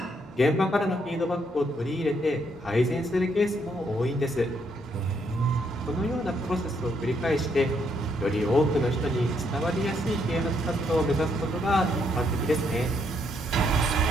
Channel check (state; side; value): normal; both; correlation 0.74